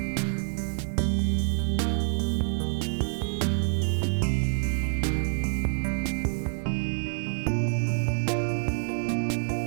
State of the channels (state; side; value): silent; left; digital silence